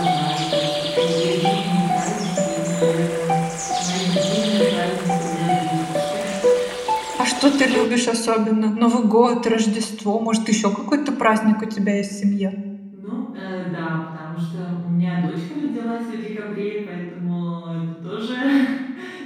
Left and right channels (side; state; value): both; identical; correlation 1.00